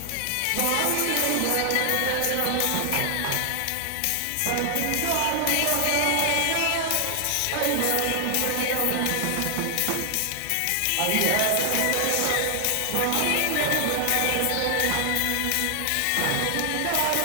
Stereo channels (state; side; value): different; both; correlation 0.00